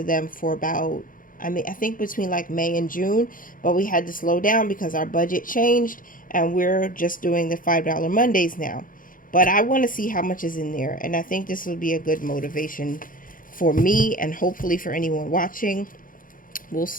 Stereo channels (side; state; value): right; late; 0.40 ms